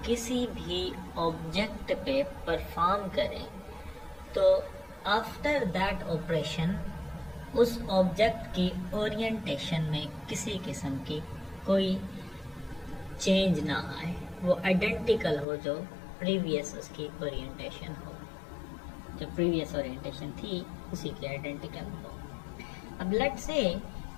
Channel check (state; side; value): drops out; right; at 15.5 s